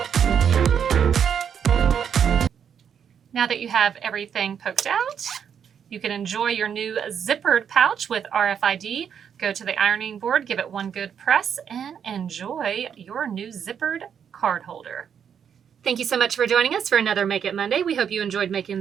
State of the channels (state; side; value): quieter; left; 7.9 dB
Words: Now that you have everything poked out, you can enjoy your new zippered pouch with RFID. Go to the ironing board, give it one good press, and enjoy your new zippered card holder. Thank you so much for joining us for another Make It Monday. We hope you enjoyed